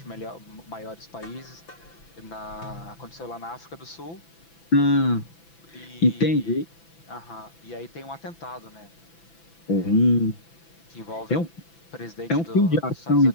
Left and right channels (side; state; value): right; late; 6.0 ms